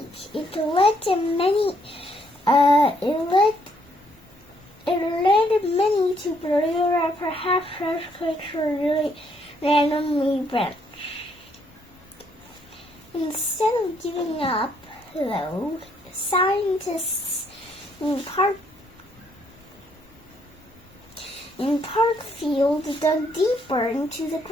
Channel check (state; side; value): normal; both; correlation 0.70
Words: It led to many. It led many to believe that perhaps earthquakes were really randomly events. Instead of giving up, though, scientists in Parkfield dug deeper into the